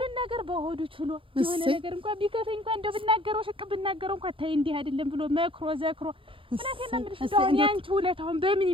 ነገር በሆዱ ችሎ የሆነ ነገር እንኳን ቢከፈኝ እንኳን እንደው ብናገረው ሽቅ ብናገረው እንኳን ታይ እንዲህ አይደለም ብሎ መክሮ ዘክሮ እውነቴን ነው የምልሽ። እንደው ያንቺ ውለታውን በምን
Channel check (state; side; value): late; left; 0.25 ms